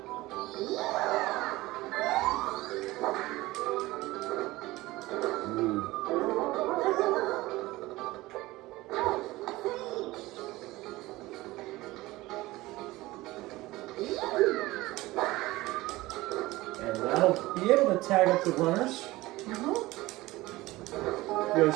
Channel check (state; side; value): quieter; left; 19.0 dB